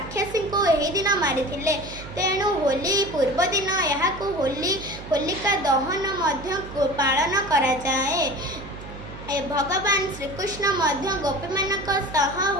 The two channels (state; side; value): noise; right; hum, 13 dB below the sound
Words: को यही दिन मारी तेणु होली पूर्व दिन यहाँ होलिका दहन मध्य पालन करा जाए। भगवान श्रीकृष्ण मध्य गोपी मानक सह